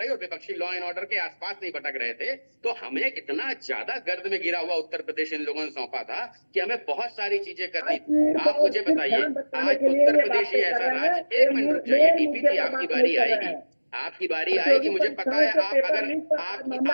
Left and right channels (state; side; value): inverted; both; correlation -1.00